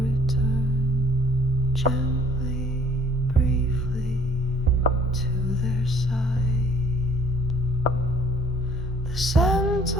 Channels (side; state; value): both; normal; correlation 0.59